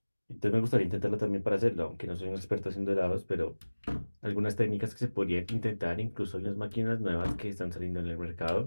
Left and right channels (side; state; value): both; inverted; correlation -1.00